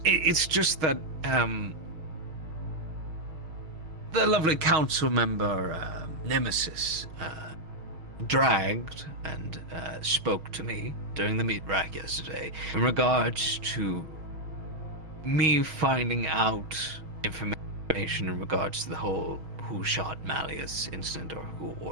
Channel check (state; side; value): late; left; 6.2 ms